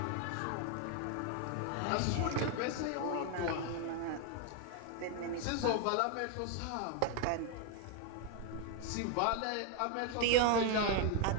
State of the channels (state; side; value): different; both; correlation 0.01